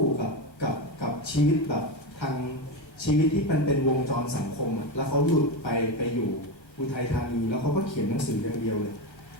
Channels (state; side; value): late; right; 1.3 ms